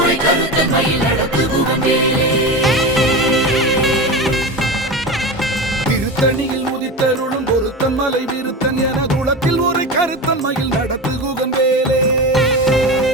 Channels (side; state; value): both; normal; correlation 0.24